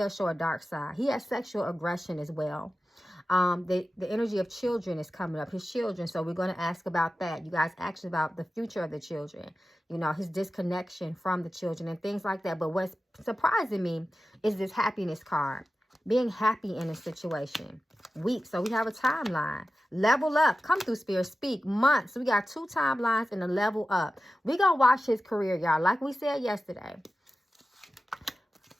show a dark side. He has sexual aggression as well. The energy of children is coming up, his children. So we're going to ask about that. You guys asked about the future of the children, his disconnection from the children and things like that. But what's surprising me is this happiness card, being happy in a situation. Weeks. So we have a timeline. Level up. Come through, Spirit. Speak. Months. So we got 2 timelines and a level up. We're going to watch his career, y'all. Like we said yesterday.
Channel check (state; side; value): normal; both; correlation 0.94